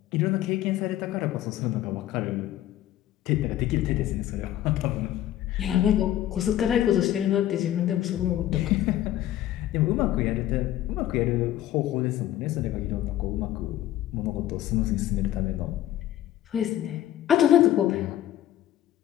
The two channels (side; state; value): right; quieter; 12.9 dB